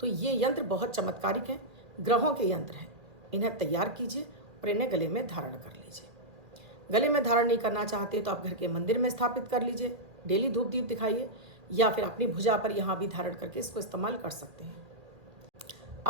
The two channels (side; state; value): left; late; 1.8 ms